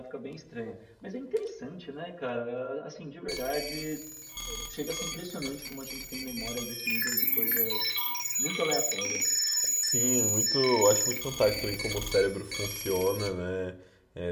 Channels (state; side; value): identical; both; correlation 1.00